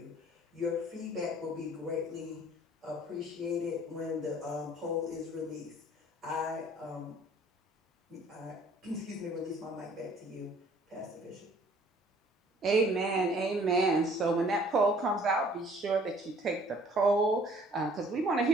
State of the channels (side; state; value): both; normal; correlation 0.55